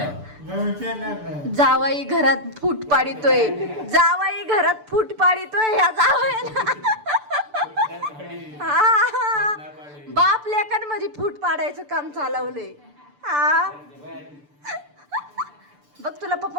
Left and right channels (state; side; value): late; left; 6.8 ms